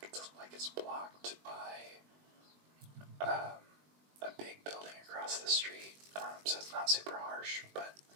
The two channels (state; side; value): late; left; 20 ms